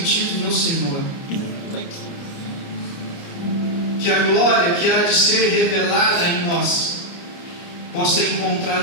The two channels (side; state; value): right; late; 29 ms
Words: no Senhor. Que a glória que há de ser revelada em nós possa